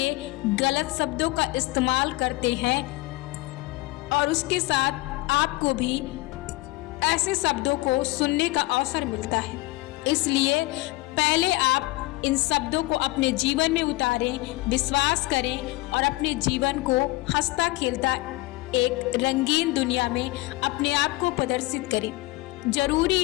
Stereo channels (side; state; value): right; quieter; 20.9 dB